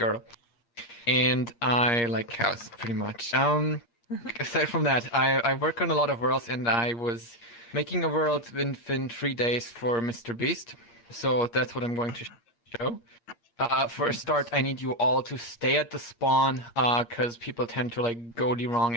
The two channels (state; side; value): late; right; 8.5 ms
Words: And I like cows, pretty much. Aside from that, I work on a lot of worlds, and I was making a world within 3 days for Mr. Beast. So that's what I'm going to show. For a start, I need you all to stay at the spawn, because people tend to like go the wrong